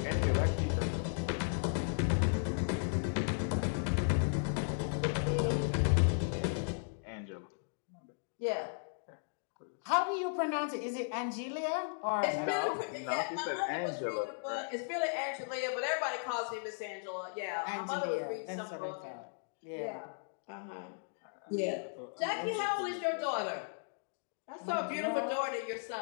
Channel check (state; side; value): silent; right; digital silence